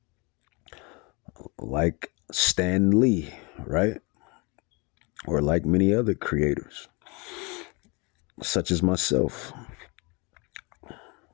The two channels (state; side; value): quieter; right; 29.3 dB